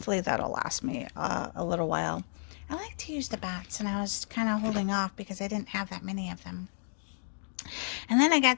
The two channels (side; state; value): right; silent; digital silence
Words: that'll last me a little while. I like to use the bats, and I was kind of holding off because I didn't have that many of them. And then I